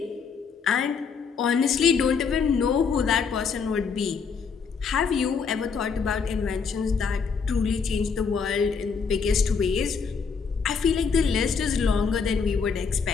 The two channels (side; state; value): right; quieter; 5.7 dB